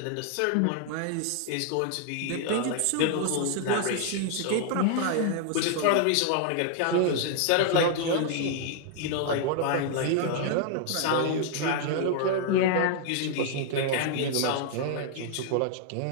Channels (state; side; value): different; both; correlation 0.00